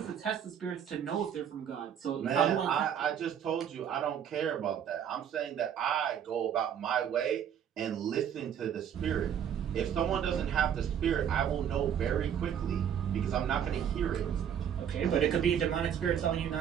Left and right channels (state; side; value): quieter; left; 8.8 dB